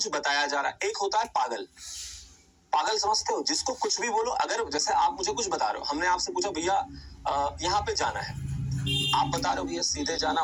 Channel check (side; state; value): both; identical; correlation 1.00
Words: बताया जा रहा है, एक होता है पागल। पागल समझते हो, जिसको कुछ भी बोलो। अगर जैसे आप मुझे कुछ बता रहे हो, हमने आपसे पूछा भैया यहाँ पे जाना है, आप बता रहे हो भैया सीधे जाना,